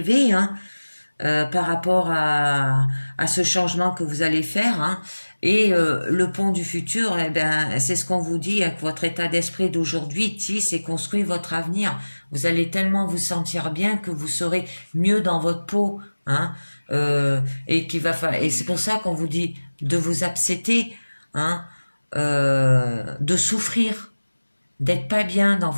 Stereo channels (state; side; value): inverted; both; correlation -1.00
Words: hein, par rapport à ce changement que vous allez faire, hein. Et le pont du futur, eh ben, c'est ce qu'on vous dit, hein, que votre état d'esprit d'aujourd'hui tisse et construit votre avenir. Vous allez tellement vous sentir bien que vous serez mieux dans votre peau, hein, et c'est pour ça qu'on vous dit de vous accepter, hein, de souffrir, d'être pas bien dans